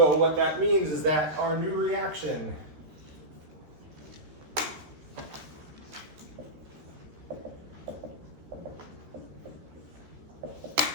what that means is that our new reaction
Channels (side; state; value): left; late; 13 ms